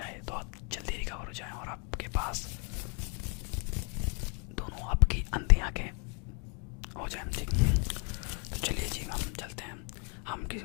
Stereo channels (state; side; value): quieter; right; 36.9 dB